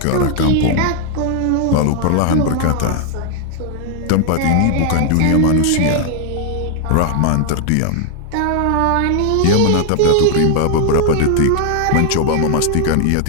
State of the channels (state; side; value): different; both; correlation 0.00